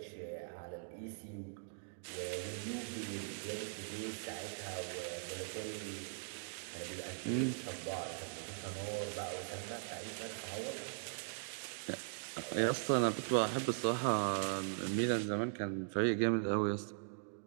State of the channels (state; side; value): silent; left; digital silence